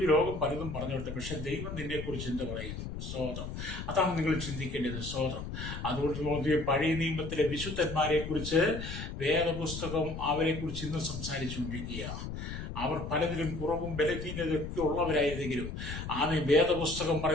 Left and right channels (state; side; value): noise; left; rumble, 7 dB below the sound